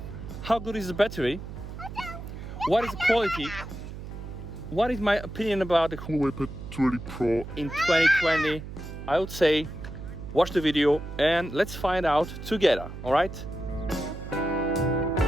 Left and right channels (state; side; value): noise; right; hum, 10 dB below the sound